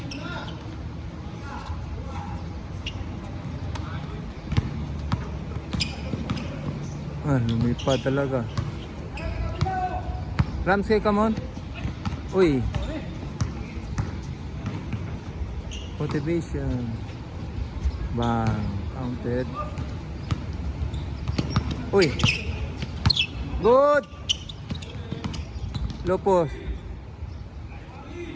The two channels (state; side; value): identical; both; correlation 1.00